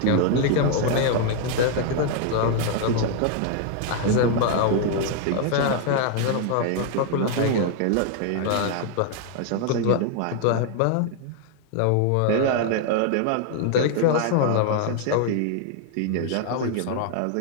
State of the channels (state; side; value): different; both; correlation 0.00